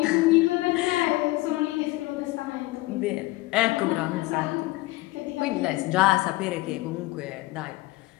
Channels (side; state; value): right; quieter; 20.0 dB